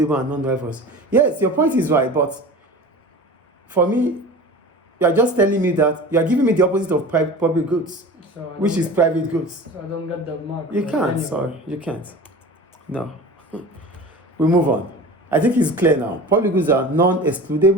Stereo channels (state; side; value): normal; both; correlation 0.36